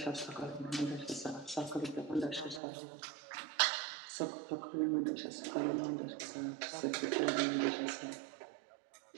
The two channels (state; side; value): drops out; left; at 2.6 s